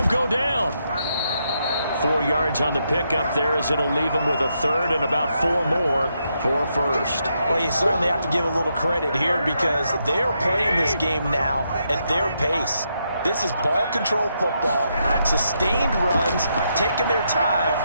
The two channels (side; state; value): both; inverted; correlation -0.80